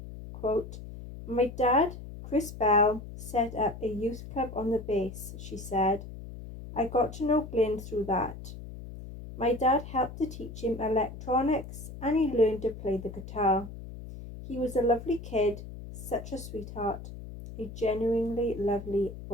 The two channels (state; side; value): noise; left; hum, 12 dB below the sound